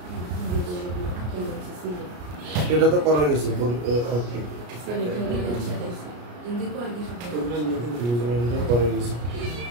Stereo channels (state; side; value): late; left; 33 ms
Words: এটা তো করা গেছে।